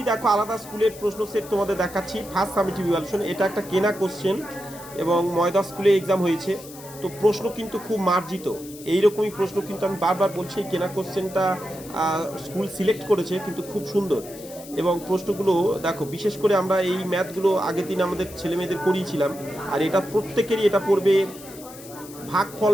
দেখো আলাদা স্কুলের প্রশ্ন সেট তোমাদের দেখাচ্ছি। ফার্স্ট সামেটিভ ইভ্যালুয়েশন, এটা একটা কেনা কোশ্চেন এবং ময়দা স্কুলে এক্সাম হয়েছে। তো প্রশ্ন কিন্তু খুব মার্জিত, এইরকমই প্রশ্ন কিন্তু আমি বারবার বলছি। এই কেনা কোশ্চেনটা স্কুল সিলেক্ট করেছে কিন্তু খুব সুন্দর, এবং প্রশ্নগুলো দেখো, বিশেষ করে আমরা এই ম্যাথগুলো আগের দিন আমাদের ছেলে মেয়েদের করিয়েছিলাম। আর এটা প্রত্যেকেরই এটা পড়বে, ভাগফল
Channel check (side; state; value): left; noise; hiss, 17 dB below the sound